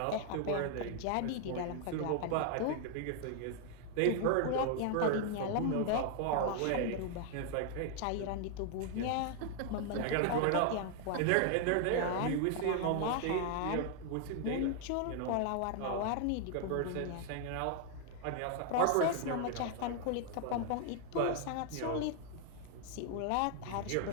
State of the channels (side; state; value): both; different; correlation 0.00